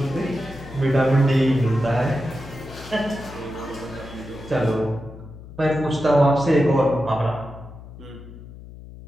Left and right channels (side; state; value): left; noise; hum, 16 dB below the sound